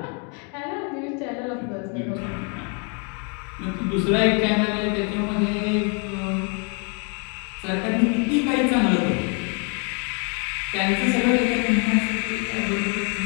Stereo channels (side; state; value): right; quieter; 36.4 dB